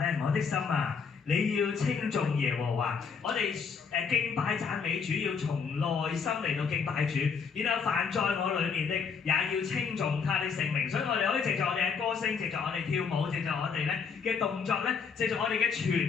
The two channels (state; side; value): quieter; right; 5.9 dB